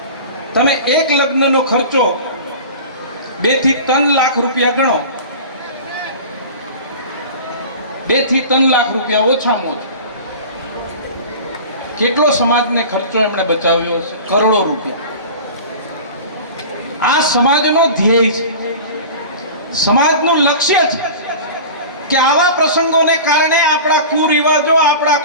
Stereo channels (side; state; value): both; inverted; correlation -0.36